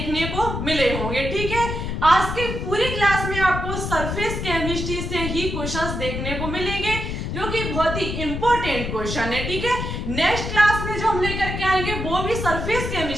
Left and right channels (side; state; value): left; noise; rumble, 4 dB below the sound